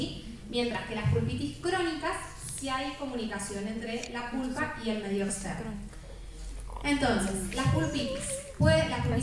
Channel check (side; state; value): both; identical; correlation 1.00